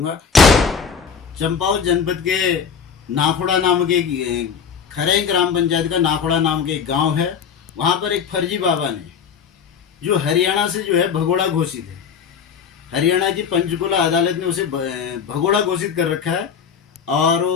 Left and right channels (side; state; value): right; quieter; 6.7 dB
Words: चंपावत जनपद के नाखुड़ा नाम के खरई ग्राम पंचायत का नाखुड़ा नाम के एक गांव है। वहां पर एक फर्जी बाबा ने, जो हरियाणा से जो है भगोड़ा घोषित है, हरियाणा की पंचकुला अदालत ने उसे भगोड़ा घोषित कर रखा है। और